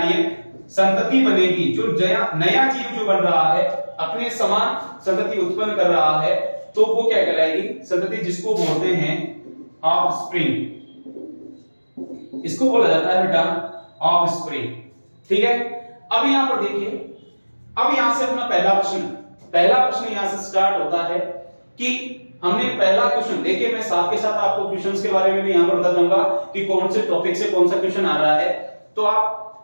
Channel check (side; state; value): both; inverted; correlation -1.00